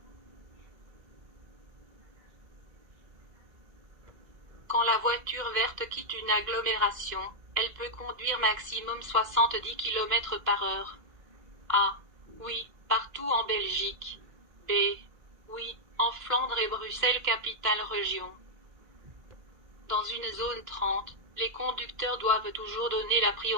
Quand la voiture verte quitte une agglomération, elle peut conduire maximum 70 km par heure. A. Oui, partout en Belgique. B. Oui, en Flandre et Bruxelles capitale région. Dans une zone 30, les conducteurs doivent toujours donner la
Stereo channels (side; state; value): left; late; 1.5 ms